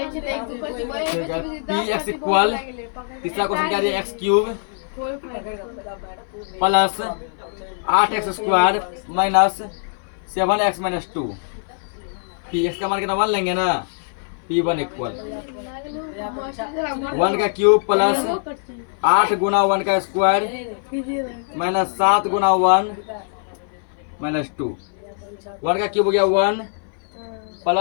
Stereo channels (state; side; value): silent; right; 59 dB below the other